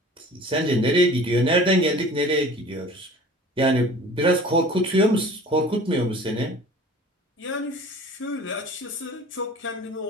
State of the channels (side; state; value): both; normal; correlation 0.44